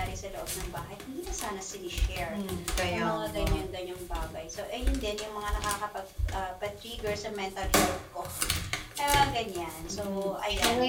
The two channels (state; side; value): identical; both; correlation 1.00